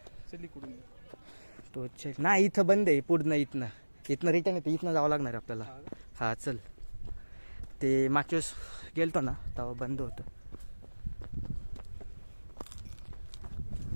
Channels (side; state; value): both; inverted; correlation -1.00